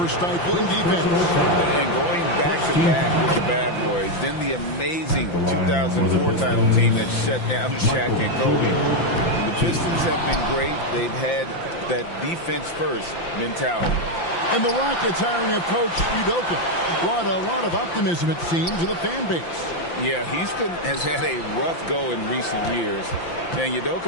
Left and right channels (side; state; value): right; late; 5.8 ms